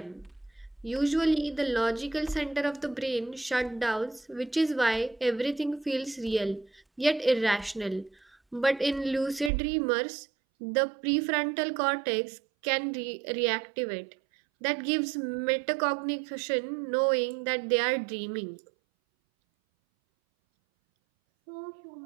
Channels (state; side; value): drops out; left; at 9.5 s